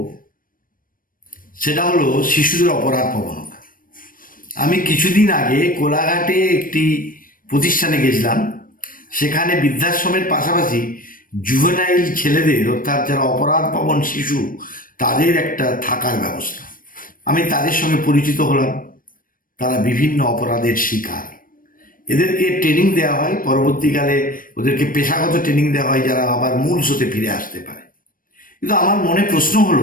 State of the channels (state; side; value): late; right; 0.40 ms